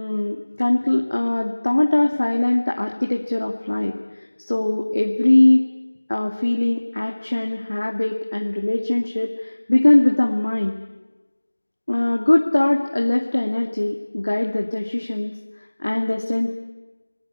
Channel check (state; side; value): inverted; both; correlation -1.00